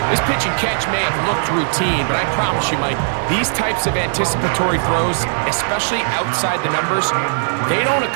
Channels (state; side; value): silent; left; 67 dB below the other